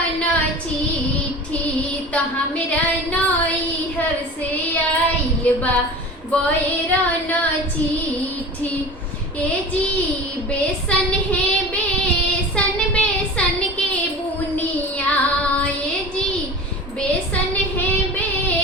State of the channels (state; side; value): normal; both; correlation 0.36